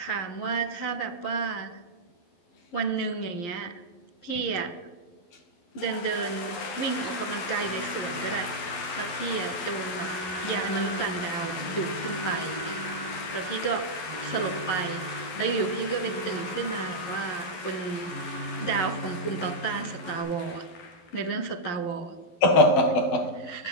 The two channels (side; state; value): right; late; 12 ms